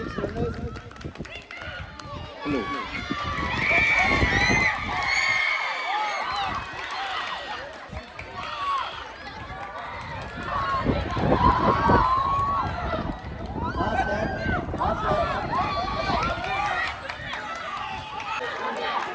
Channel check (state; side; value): identical; both; correlation 1.00